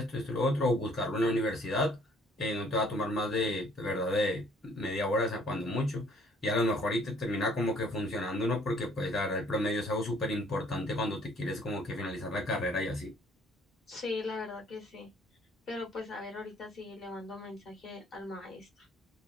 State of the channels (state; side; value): normal; both; correlation 0.60